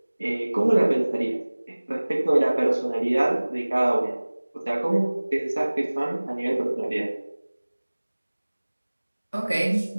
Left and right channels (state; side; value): inverted; both; correlation -1.00